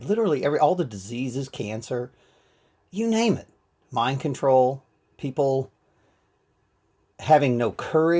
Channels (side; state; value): both; identical; correlation 1.00